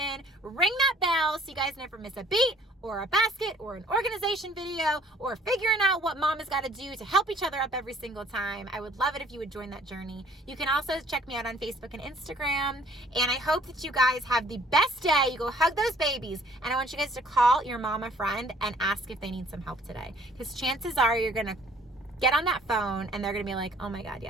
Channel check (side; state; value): both; normal; correlation 0.57